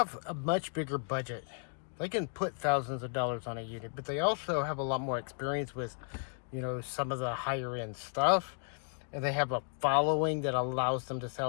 a much bigger budget. They can put thousands of dollars on a unit, but they also have a lot more experience with, some of the higher end stuff. And they have a following that allows them to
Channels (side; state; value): right; silent; 55 dB below the other